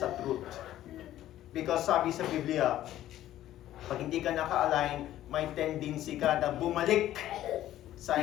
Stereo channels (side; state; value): right; quieter; 13.2 dB